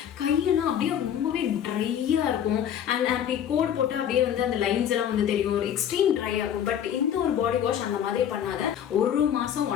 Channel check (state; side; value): quieter; right; 9.4 dB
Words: கையெல்லாம் அப்படியே ரொம்பவே ட்ரையாக இருக்கும். அண்ட் அப்படி கோட் போட்டு அப்படியே வந்து அந்த லைன்ஸ் எல்லாம் வந்து தெரியும், ஒரு எக்ஸ்ட்ரீம் ட்ரை ஆகும். பட் இந்த ஒரு பாடி வாஷ் அந்த மாதிரி பண்ணாத 1 மாதம்